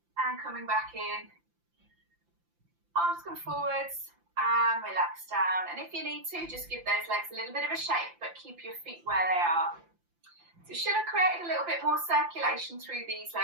And coming back in. Arms come forwards and relax down. And if you need to, just give those legs a little bit of a shake, but keep your feet where they are. So you should have created a little bit more circulation through these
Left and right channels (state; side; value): late; left; 5.8 ms